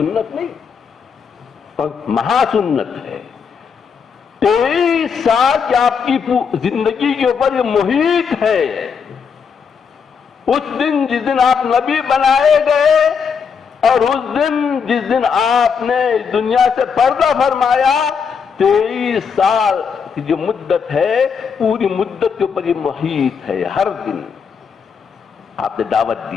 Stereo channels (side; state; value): right; quieter; 6.3 dB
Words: نہیں، مہا سنت ہے. 23 سال کی آپ کی زندگی کے اوپر یہ محیط ہے. اس دن جس دن آپ نبی بنائے گئے اور اس دن جس دن آپ نے اس دنیا سے پردہ فرمایا، 23 سال کی جو مدت ہے، پوری مدت کے اوپر یہ محیط ہے. ہر دن آپ نے دعوت